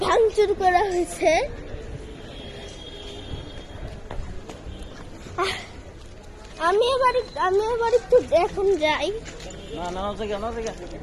ভাঙচুর করা হয়েছে। আমি এবার একটু এখন যাই।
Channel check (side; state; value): both; identical; correlation 1.00